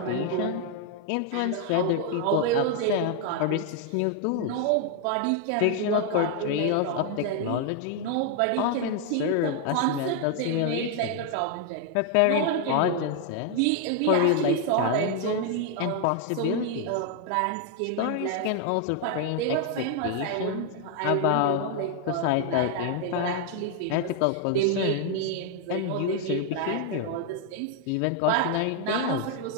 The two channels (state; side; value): different; both; correlation 0.00